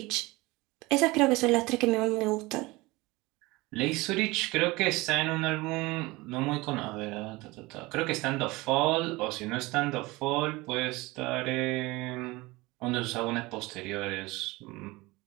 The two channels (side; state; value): left; quieter; 22.0 dB